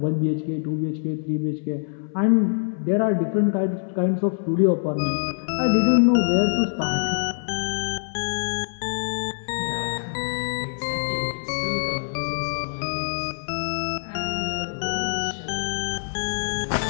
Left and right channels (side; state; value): right; silent; digital silence